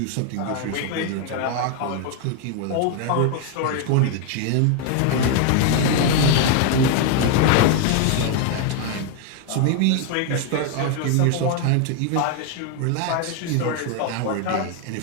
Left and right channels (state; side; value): different; both; correlation 0.01